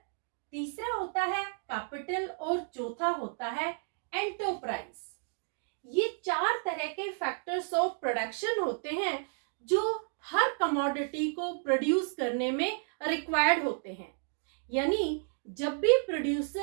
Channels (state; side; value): silent; left; 55 dB below the other